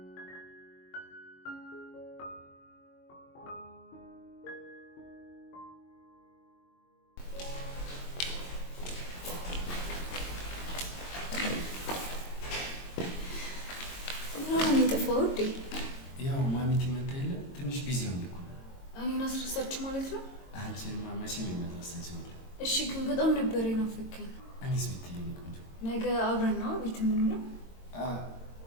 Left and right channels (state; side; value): late; right; 22 ms